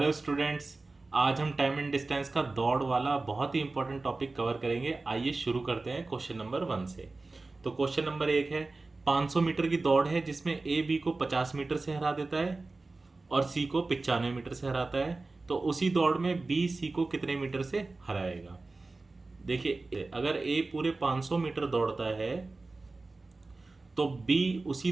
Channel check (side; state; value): left; quieter; 3.5 dB